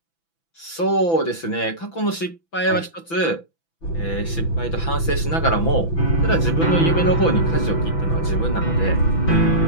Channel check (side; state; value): right; late; 6.0 ms